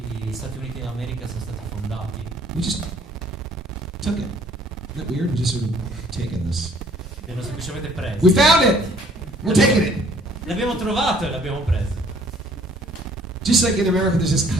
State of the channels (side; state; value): both; normal; correlation 0.58